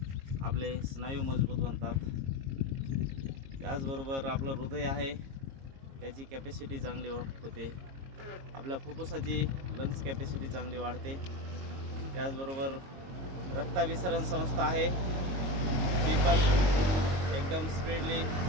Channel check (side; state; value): left; late; 22 ms